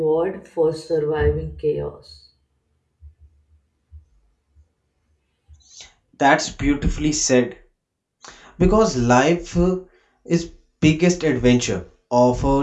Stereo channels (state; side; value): identical; both; correlation 1.00